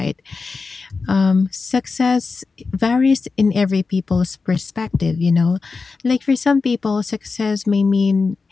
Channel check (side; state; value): right; quieter; 4.4 dB